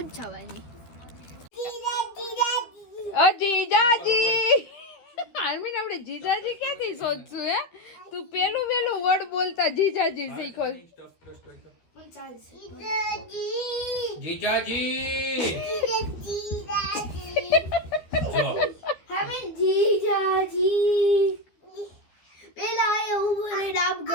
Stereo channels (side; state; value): right; late; 13 ms